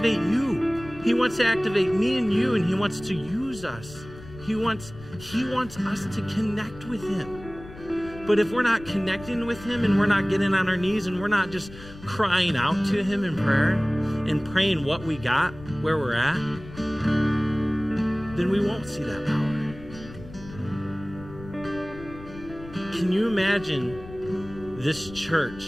you. He wants to activate me and you, and he wants to use us. He wants us to connect with him. But if we're not connecting with him, and we're not getting on our knees, and we're not just crying out to him in prayer and praying what we got, where we're at, then we won't see that power. Can you imagine this church,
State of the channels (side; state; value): left; noise; rumble, 16 dB below the sound